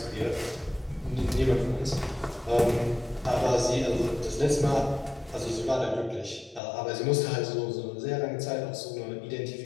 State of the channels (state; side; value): drops out; right; at 6.6 s